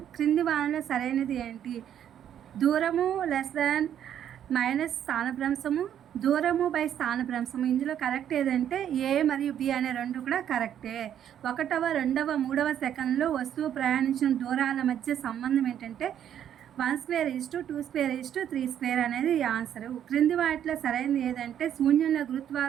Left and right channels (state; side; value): quieter; left; 9.9 dB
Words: క్రింది వానలో సరైనది ఏంటి? దూరము మైనస్ స్థానభ్రంశము, దూరము బై స్థానభ్రంశము. ఇందులో కరెక్ట్ ఏదంటే ఏ మరియు బి అనే రెండు కూడా కరెక్టే. 1వ, 2వ, 3వ సెకండ్లో వస్తువు ప్రయాణించిన దూరాల మధ్య సంబంధం ఏంటంటే 1/2 2/2 3/2 అనేది ఆన్సరు. క్రింది వాటిలో సరైనది ఏదంటే శూన్యంలో